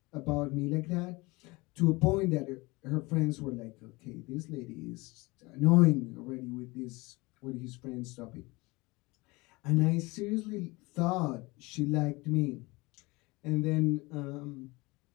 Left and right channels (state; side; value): quieter; right; 24.0 dB